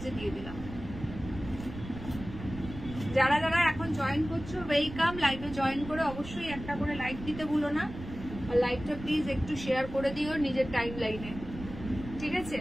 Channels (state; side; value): noise; right; rumble, 11 dB below the sound